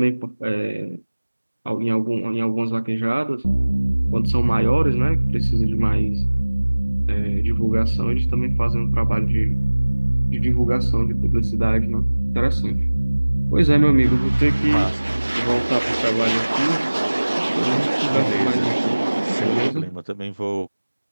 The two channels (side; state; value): both; inverted; correlation -1.00